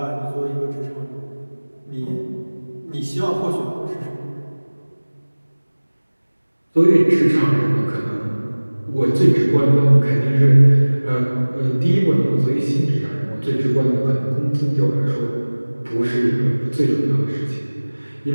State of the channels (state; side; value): inverted; both; correlation -1.00